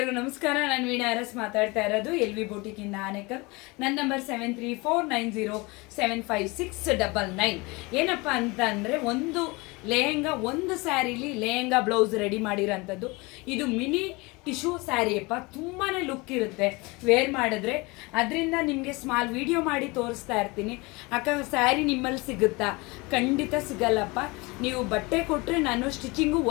ನಮಸ್ಕಾರ. ನಾನು ವೀಣಾ ಅರಸ್ ಮಾತಾಡ್ತಾ ಇರೋದು ಎಲ್ ವಿ ಬೂಟಿಕಿಂದ ಆನೇಕಲ್. ನನ್ನ ನಂಬರ್ 7349075699. ಏನಪ್ಪ ಅಂತ ಅಂದರೆ, ಒಂದು ಲೆಹೆಂಗಾ, ಒಂದು ಸ್ಯಾರಿಲಿ ಲೆಹೆಂಗಾ ಬ್ಲೌಸ್ ರೆಡಿ ಮಾಡಿರೋಂಥದ್ದು. ಇದು ಮಿನಿ ಟಿಶ್ಯೂ ಸ್ಯಾರಿ ಅಪ್ಪ, ತುಂಬಾ ಲುಕ್ ಇರುತ್ತೆ ವೇರ್ ಮಾಡಿದ್ರೆ. ಅದರಿಂದ ನಿಮಗೆ ಸ್ಮಾಲ್ ವಿಡಿಯೋ ಮಾಡಿ ತೋರಿಸ್ತಾ ಇರ್ತೀನಿ. ಅಕ್ಕ ಸ್ಯಾರಿ ನಿಮ್ಮಲ್ಲಿ ಸಿಗುತ್ತಾ? ಖಂಡಿತ ಸಿಗಲ್ಲಪ್ಪ. ನೀವು ಬಟ್ಟೆ ಕೊಟ್ಟರೆ ನಾನು ಸ್ಟಿಚಿಂಗು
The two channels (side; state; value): right; quieter; 25.3 dB